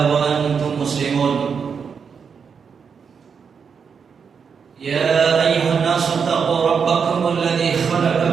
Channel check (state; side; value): quieter; left; 6.3 dB